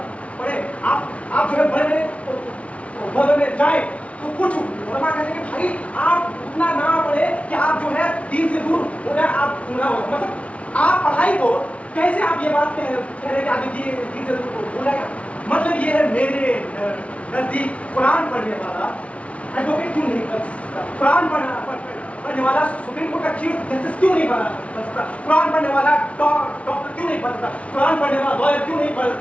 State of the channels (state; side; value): late; right; 0.063 ms